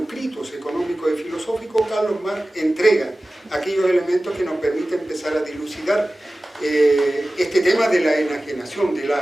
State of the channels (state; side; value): normal; both; correlation 0.97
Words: económicos y filosóficos, Carlos Marx entrega aquellos elementos que nos permiten empezar a dilucidar este tema de la enajenación, de la